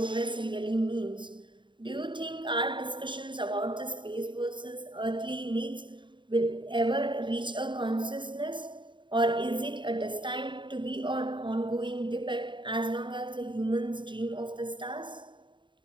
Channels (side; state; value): left; late; 0.23 ms